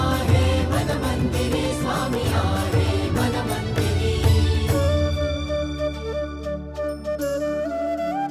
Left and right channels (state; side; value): identical; both; correlation 1.00